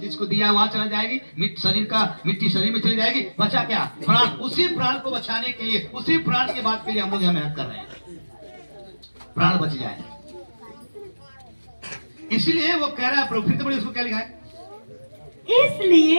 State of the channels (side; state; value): both; inverted; correlation -1.00